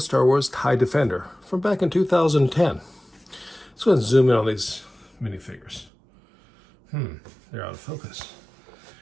Wars TIE Defender from back in 2010. Let's go ahead and zoom in on these minifigures. They're out of focus.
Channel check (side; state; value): left; drops out; at 5.9 s